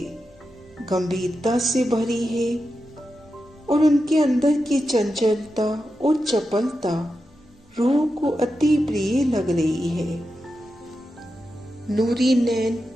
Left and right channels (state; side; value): normal; both; correlation 0.89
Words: गंभीरता से भरी है और उनके अंदर की चंचलता और चपलता रूह को अति प्रिय लग रही है। नूरी नैन